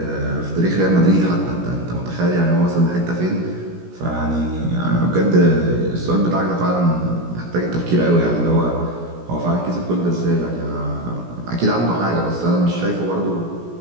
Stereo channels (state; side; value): late; left; 17 ms